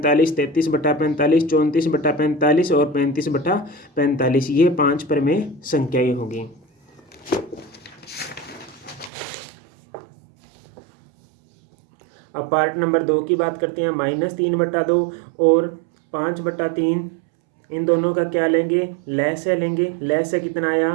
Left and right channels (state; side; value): drops out; left; at 9.1 s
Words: 33/45, 34/45 और 35/45। ये 5 प्रमेय संख्याएं होगी। अब पार्ट नंबर 2 की बात करते हैं। -3/2 और 5/3 इन दोनों का क्या लेंगे, लय से लेंगे। लय से कितना